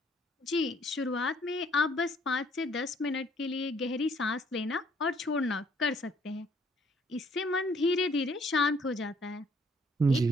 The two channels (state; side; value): normal; both; correlation 0.64